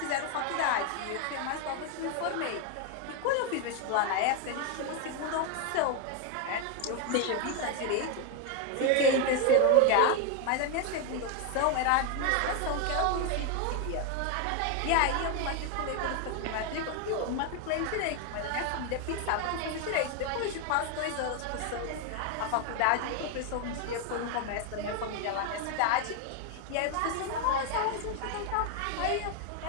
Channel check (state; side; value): different; both; correlation 0.01